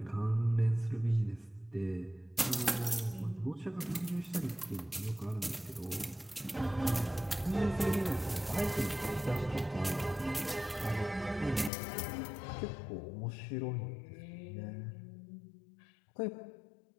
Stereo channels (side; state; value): right; drops out; at 11.7 s